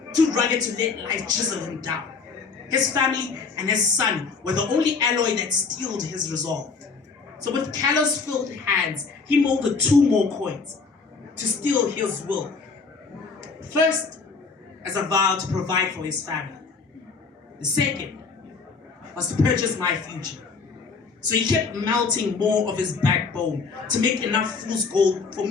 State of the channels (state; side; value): quieter; right; 4.7 dB